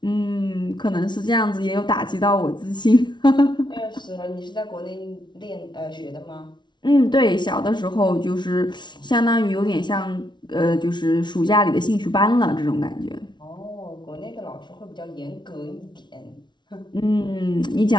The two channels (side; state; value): right; late; 0.22 ms